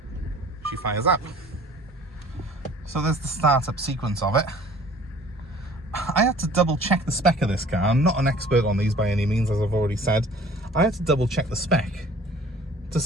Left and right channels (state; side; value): normal; both; correlation 0.50